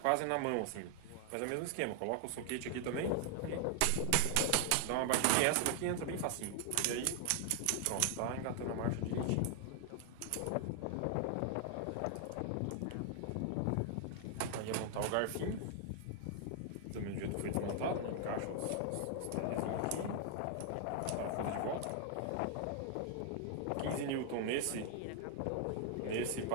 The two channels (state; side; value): different; both; correlation 0.00